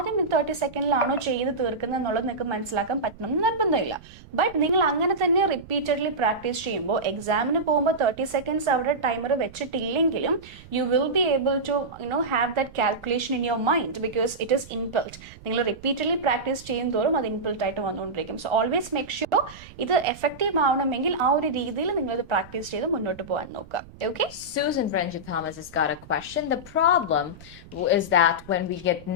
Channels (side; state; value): right; noise; rumble, 20 dB below the sound